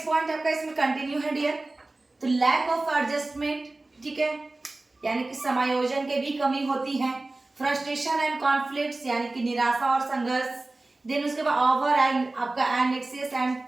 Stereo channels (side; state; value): left; quieter; 3.0 dB